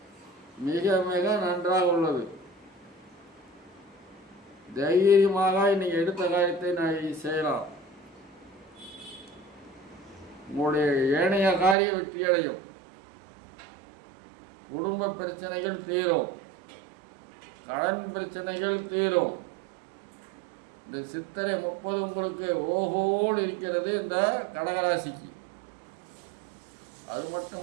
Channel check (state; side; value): drops out; left; at 11.8 s